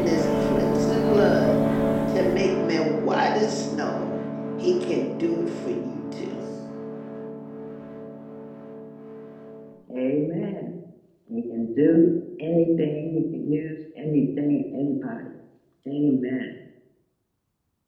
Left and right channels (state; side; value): identical; both; correlation 1.00